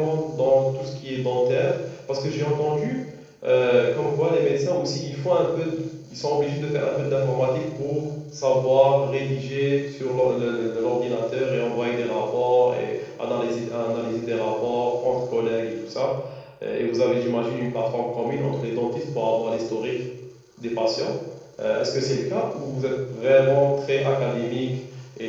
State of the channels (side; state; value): both; identical; correlation 1.00